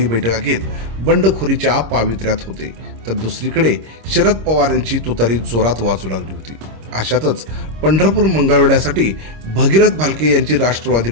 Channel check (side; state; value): left; late; 26 ms